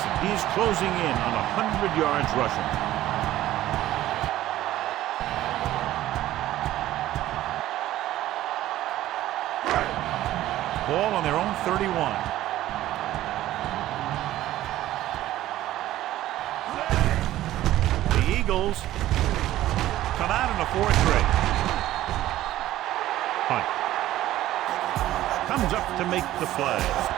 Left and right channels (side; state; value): left; quieter; 14.4 dB